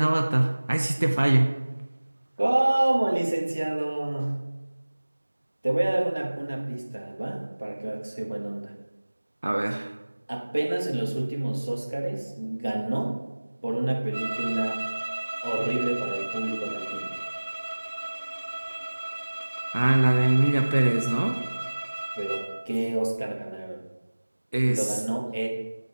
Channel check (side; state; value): both; inverted; correlation -1.00